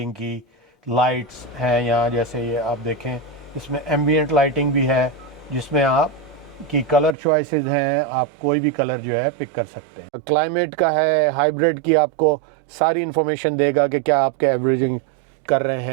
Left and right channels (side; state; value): left; drops out; at 7.2 s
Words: की, लाइट्स हैं यहाँ, जैसे ये आप देखें इसमें एम्बिएंट लाइटिंग भी है जिसमें आप की कलर चॉइसेस हैं, आप कोई भी कलर जो है पिक कर सकते हैं। क्लाइमेट का है, हाइब्रिड की आपको सारी इन्फॉर्मेशन देगा कि क्या आपके एवरेजिंग कर रहे